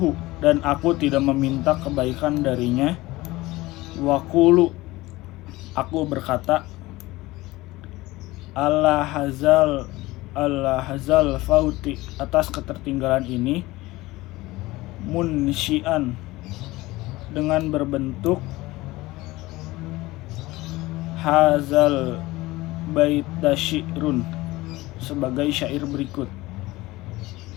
dan aku tidak meminta kebaikan darinya, wakulu, Aku berkata, Allah hazal fauti, atas ketertinggalan ini, munsyian, dengan berbentuk hazal baita syi'run, sebagai syair berikut.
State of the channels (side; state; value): right; quieter; 19.4 dB